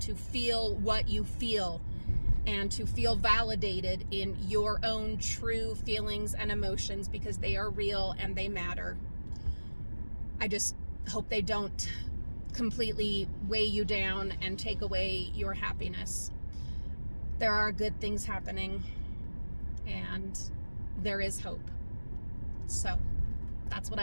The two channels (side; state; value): both; inverted; correlation -1.00